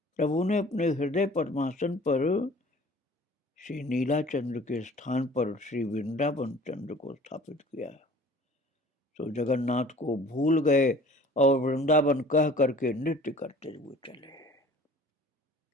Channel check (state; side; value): normal; both; correlation 0.48